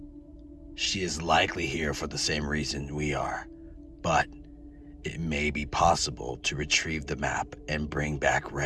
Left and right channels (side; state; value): both; identical; correlation 1.00